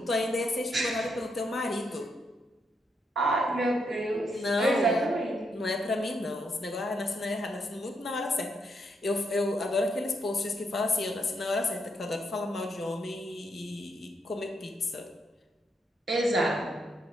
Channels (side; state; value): both; normal; correlation 0.79